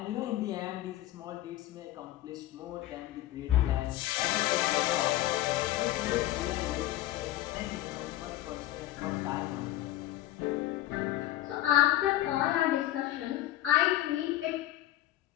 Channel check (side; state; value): right; quieter; 15.1 dB